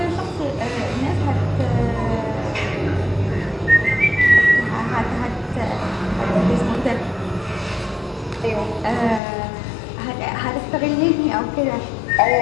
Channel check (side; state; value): right; drops out; at 9.2 s